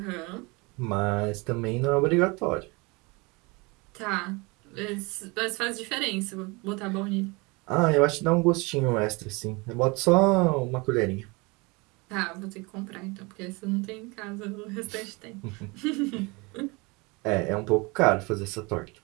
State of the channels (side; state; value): left; quieter; 26.8 dB